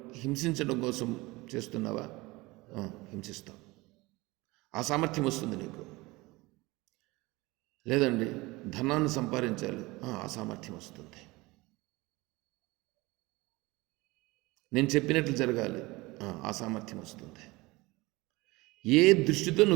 హింసించడం కోసం చేస్తున్నావా? హింసిస్తావు. ఆ సామర్థ్యం వస్తుంది నీకు. లేదండి ధనాన్ని సంపాదించాలి, ఆ సామర్థ్యం వస్తుంది. నేను చెప్పినట్లు జరగాలి, ఆ సామర్థ్యం వస్తుంది. ఏ దృష్టితో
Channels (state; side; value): quieter; left; 22.2 dB